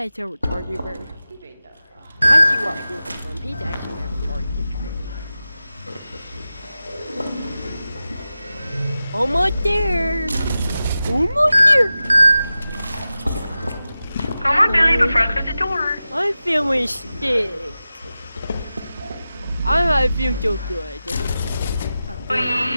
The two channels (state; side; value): inverted; both; correlation -0.94